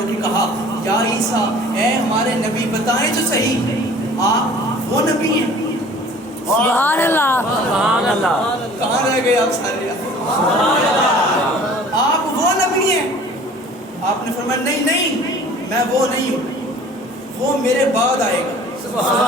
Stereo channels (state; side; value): normal; both; correlation 0.48